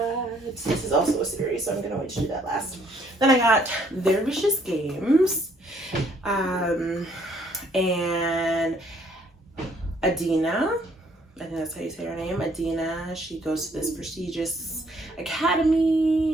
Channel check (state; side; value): normal; both; correlation 0.65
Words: this is also a series, so I'm gonna wait to do that last. Then I got Their Vicious Games, and Adina, I think that's how you say her name, Adina. She goes to this prestigious